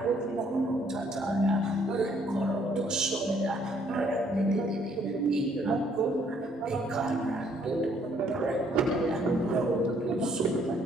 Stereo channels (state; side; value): normal; both; correlation 0.66